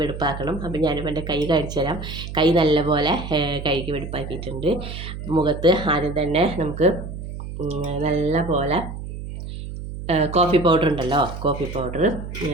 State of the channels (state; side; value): noise; right; hum, 9 dB below the sound